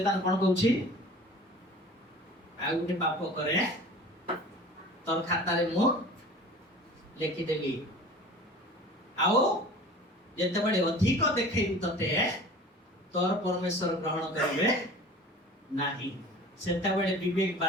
କଣ କହୁଛି ଆଉ ଗୋଟେ ପାପ କରେ ତୋର ଖାତାରେ ମୁଁ ଲେଖିଦେଲି ଆଉ ଯେତେବେଳେ ଅଧିକ ଦେଖେଇବି ତତେ ତୋର ପରମେଶ୍ୱର ଗ୍ରହଣ କରିବେ ନାହିଁ ସେତେବେଳେ ବିବେକ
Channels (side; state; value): both; normal; correlation 0.41